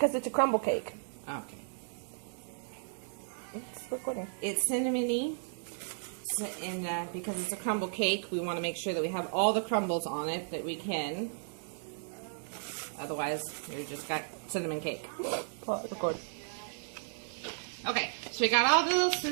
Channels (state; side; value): silent; left; 55 dB below the other